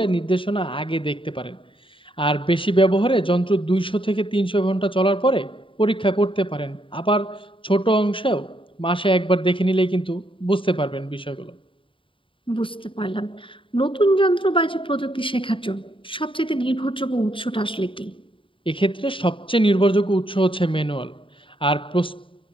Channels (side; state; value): right; late; 0.25 ms